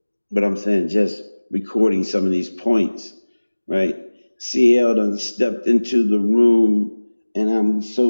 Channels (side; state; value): both; inverted; correlation -1.00